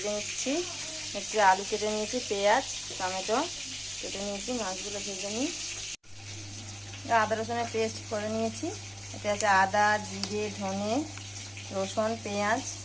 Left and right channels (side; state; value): both; identical; correlation 1.00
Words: নিচ্ছি। হচ্ছে আলু কেটে নিয়েছি, পেঁয়াজ টমেটো কেটে নিয়েছি, মাছগুলো ভেজে নিই। আদা রসুনের পেস্ট করে নিয়েছি। এতে আছে আদা, জিরে, ধনে, রসুন, পেঁয়াজ